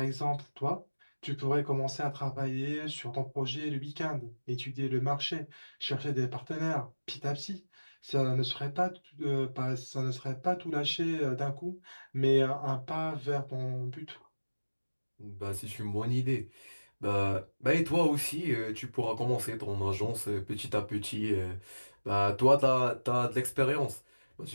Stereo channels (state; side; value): inverted; both; correlation -1.00